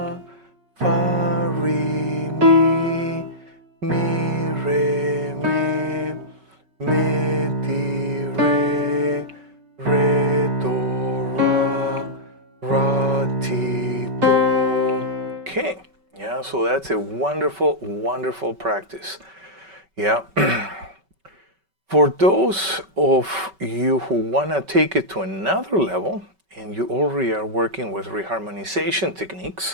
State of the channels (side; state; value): left; late; 5.3 ms